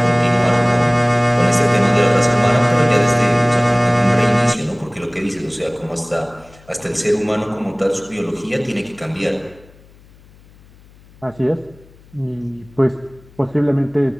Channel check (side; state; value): left; noise; hum, 26 dB below the sound